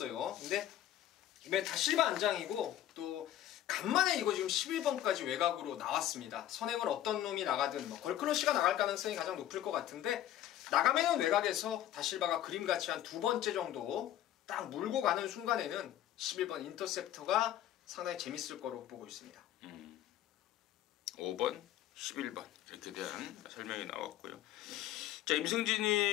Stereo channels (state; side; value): quieter; right; 12.4 dB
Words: 근데 이번에 다 실바 안장이고 또 간만에 이거 지금 11번까지 외곽으로 나왔습니다. 선행을 어떤 놈이 나가든 뭐 걸크러쉬가 나갈 가능성이 가장 높을 것 같은데, 나가면은 외곽에서 다실바가 그림같이 한 2번째 정도 딱 물고 가는 순간에는 11번 인터셉터가 상당히 재밌을 거로 보고 있습니다. 5번, 11번 이렇게 대한 설명이 나왔고요. 자,